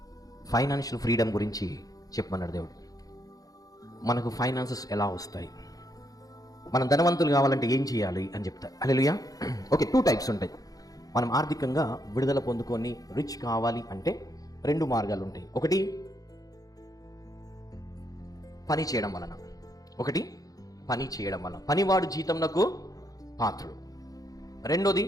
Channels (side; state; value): right; late; 0.17 ms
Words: ఫైనాన్షియల్ ఫ్రీడమ్ గురించి చెప్పమన్నాడు దేవుడు. మనకు ఫైనాన్సెస్ ఎలా వస్తాయి, మనం ధనవంతులు కావాలంటే ఏం చేయాలి అని చెప్తారు. హల్లెలూయా. ఓకే, 2 టైప్స్ ఉంటాయి. మనం ఆర్థికంగా విడుదల పొందుకొని రిచ్ కావాలి అంటే 2 మార్గాలు ఉంటాయి. ఒకటి పని చేయడం వలన, ఒకటి పని చేయడం వలన, పనివాడు జీతంనకు పాత్రుడు. రెండోది